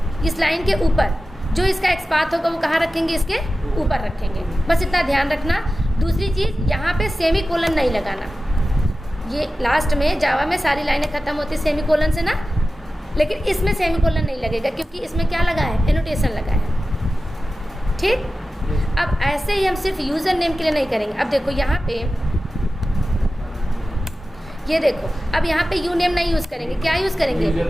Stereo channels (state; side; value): normal; both; correlation 0.94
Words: इस लाइन के ऊपर जो इसका एक्सपाथ होगा वो कहाँ रखेंगे, इसके ऊपर रखेंगे। बस इतना ध्यान रखना। दूसरी चीज़, यहाँ पे सेमी कोलन नहीं लगाना। ये लास्ट में जावा में सारी लाइनें ख़त्म होती सेमी कोलन से ना, लेकिन इसमें सेमी कोलन नहीं लगेगा क्योंकि इसमें क्या लगा है, एनोटेशन लगा है। ठीक, अब ऐसे ही हम सिर्फ यूज़र नेम के लिए नहीं करेंगे। अब देखो यहाँ पे, ये देखो, अब यहाँ पे यू नेम नहीं यूज़ करेंगे, क्या यूज़ करेंगे,